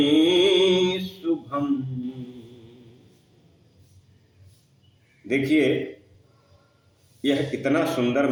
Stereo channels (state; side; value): identical; both; correlation 1.00